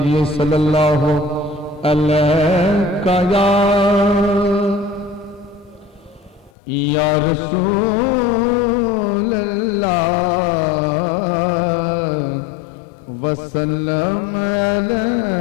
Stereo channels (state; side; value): drops out; right; at 6.5 s